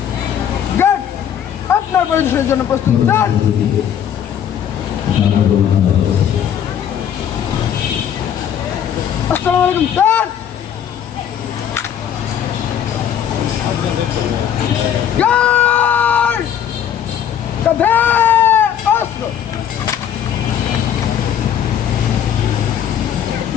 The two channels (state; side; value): quieter; right; 9.2 dB